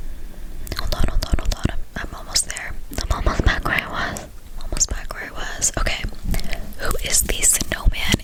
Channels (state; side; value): identical; both; correlation 1.00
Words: I'm almost there. I'm almost back where I was. Okay. Who is the snowman